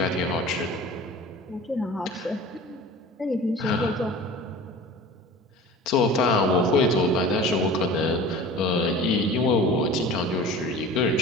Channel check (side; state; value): both; normal; correlation 0.39